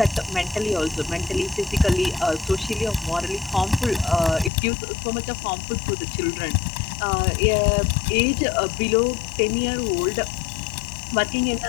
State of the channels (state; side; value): drops out; right; at 4.5 s